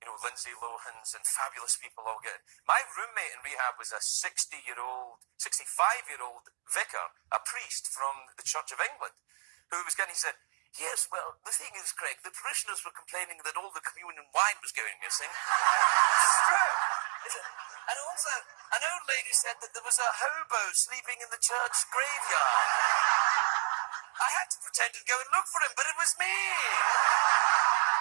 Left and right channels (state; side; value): silent; left; digital silence